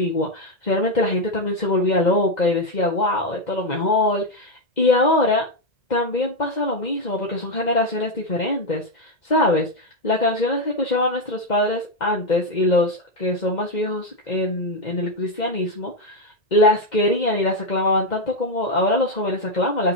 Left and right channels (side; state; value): right; late; 2.0 ms